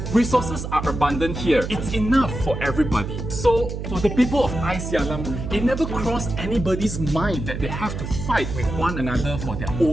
Resources are abundant here. It's enough for everybody. So, for the people of Icyalam, it never crossed anybody's mind that they have to fight with one another for their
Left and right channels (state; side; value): noise; right; hum, 5 dB below the sound